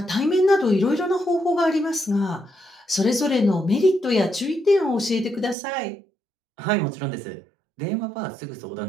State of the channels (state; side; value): drops out; left; at 5.6 s